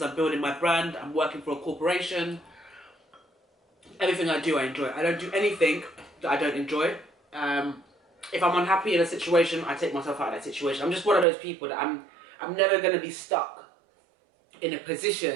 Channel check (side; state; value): left; drops out; at 11.2 s